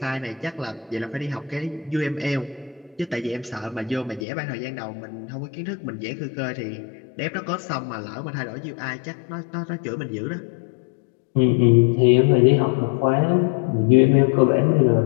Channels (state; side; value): drops out; right; at 4.2 s